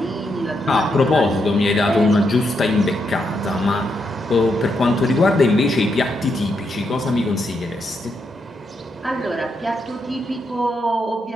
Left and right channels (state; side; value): normal; both; correlation 0.80